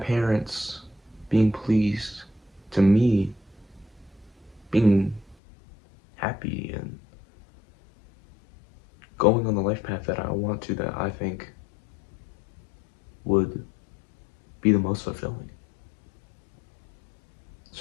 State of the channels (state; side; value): drops out; right; at 5.4 s